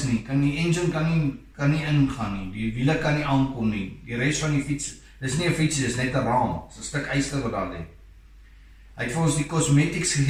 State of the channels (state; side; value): identical; both; correlation 1.00